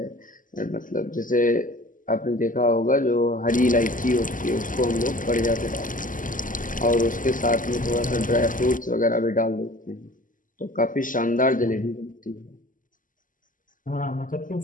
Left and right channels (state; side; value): late; right; 0.38 ms